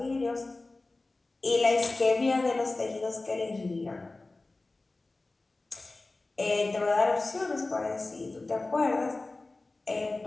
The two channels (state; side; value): quieter; right; 3.2 dB